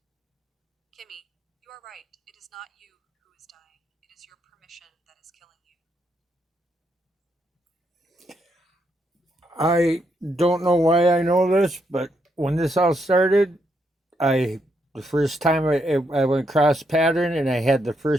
Kimmy, you are right. It is not you who is dying. It is your permission that is killing you. I don't know why I know this, but when this all started, I the first time I went cross pattern and I had the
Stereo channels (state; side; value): normal; both; correlation 0.78